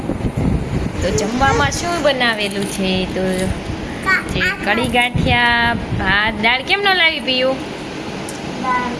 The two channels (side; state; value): both; identical; correlation 1.00